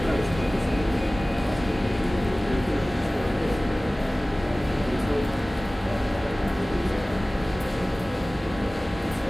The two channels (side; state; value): both; normal; correlation 0.98